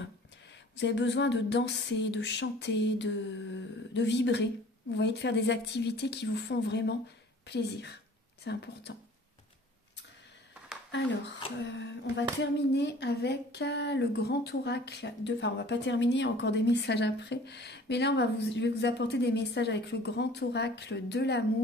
Vous avez besoin de danser, de chanter, de vibrer. Vous voyez, de faire des activités qui vous font vraiment plaisir. C'est important. Alors, on va terminer avec le grand oracle. Enfin, on va pas terminer, il y a encore des messages après. Mais là, je vais vous apporter des messages avec le grand oracle de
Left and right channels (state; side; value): normal; both; correlation 0.49